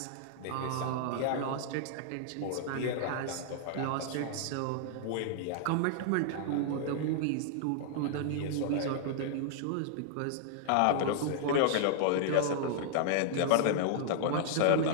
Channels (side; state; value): both; different; correlation -0.01